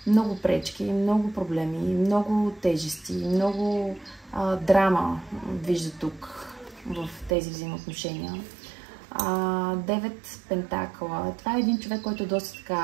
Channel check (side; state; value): left; drops out; at 7.4 s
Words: много пречки, много проблеми, много тежести, много драма вижда тук в тези взаимоотношения. 9 пентакъла. Това е един човек, който е доста